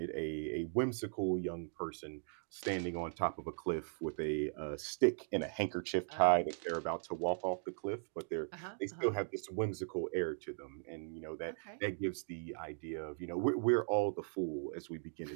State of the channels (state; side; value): silent; left; digital silence